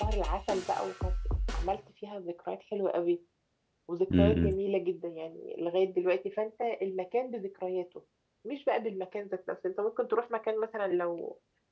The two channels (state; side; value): identical; both; correlation 1.00